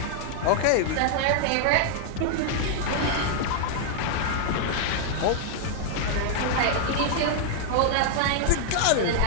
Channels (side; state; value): both; different; correlation -0.01